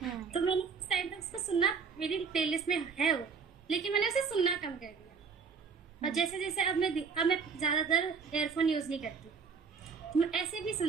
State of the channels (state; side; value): quieter; left; 5.6 dB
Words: तो मैंने उस टाइम तक उसको सुनना, मेरी प्लेलिस्ट में है वो, लेकिन मैंने उसे सुनना कम कर दिया। और जैसे जैसे अब मैं ज्यादातर एयरफोन यूज नहीं करती, मैं ऐसे भी